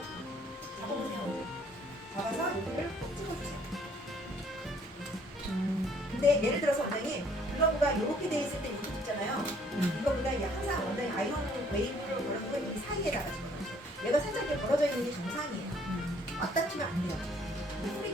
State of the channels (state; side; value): normal; both; correlation 0.61